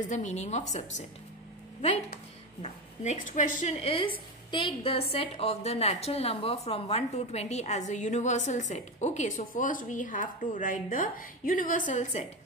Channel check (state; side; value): normal; both; correlation 0.18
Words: the meaning of subset? Right? Now, next question is, take the set of the natural number from 1 to 20 as a universal set. Okay, so first we have to write the universal set,